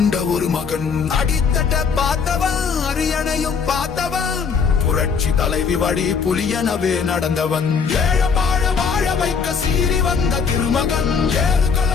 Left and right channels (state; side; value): quieter; right; 5.9 dB